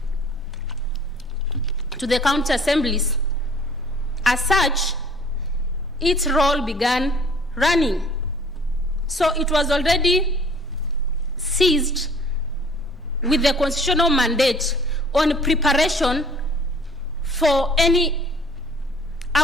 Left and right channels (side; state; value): both; normal; correlation 0.52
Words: to the county assemblies. As such, its role began running. So it was already seized with the constitutional mandate on preparation for any